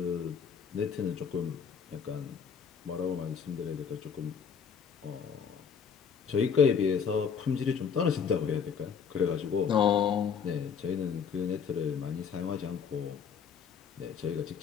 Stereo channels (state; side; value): quieter; right; 6.8 dB